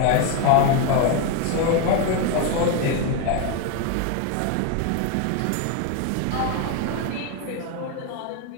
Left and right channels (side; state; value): both; different; correlation 0.01